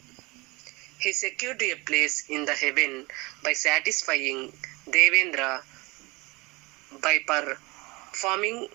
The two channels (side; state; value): left; quieter; 24.3 dB